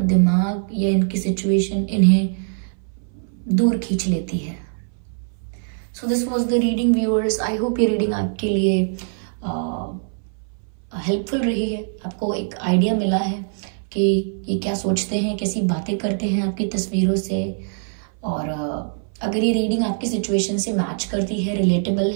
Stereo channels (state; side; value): silent; left; 59 dB below the other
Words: या इनकी सिचुएशन इन्हें दूर खींच लेती है। So this was the reading viewers. I hope ये रीडिंग आपके लिए हेल्पफुल रही है, आपको एक आइडिया मिला है कि ये क्या सोचते हैं, कैसी बातें करते हैं आपकी तस्वीरों से। और अगर ये रीडिंग आपकी सिचुएशन से मैच करती है, रिलेटेबल